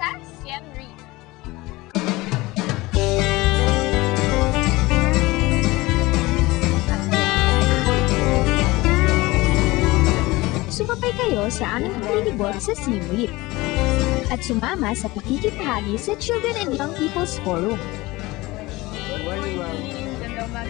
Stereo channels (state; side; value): quieter; right; 20.8 dB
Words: Siem Reap. Sumabay kayo sa aming paglilibot sa Siem Reap at sumama sa pakikipahagi sa Children and Young People's Forum. Ganda